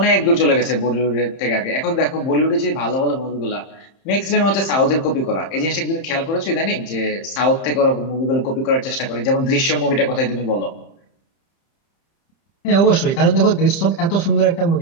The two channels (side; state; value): right; late; 30 ms